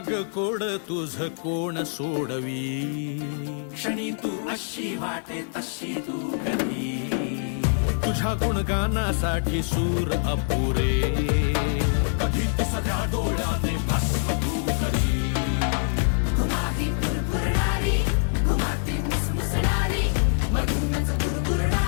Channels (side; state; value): right; silent; 59 dB below the other